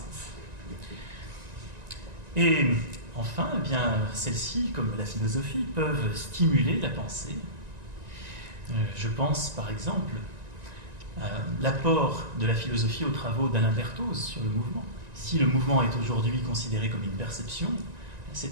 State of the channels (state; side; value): late; left; 1.9 ms